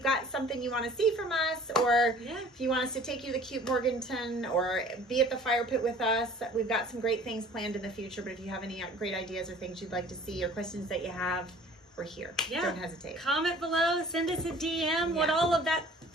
got something you want to see from us, or if you want us to take you to Cute Morganton or be at the fire pit with us, we've got some great things planned in the future. But if you have any great ideas or things you'd like to see or questions that you have, we're here. Yeah. Don't hesitate. Comment below. Send us a DM. What all of that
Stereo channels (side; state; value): both; normal; correlation 0.49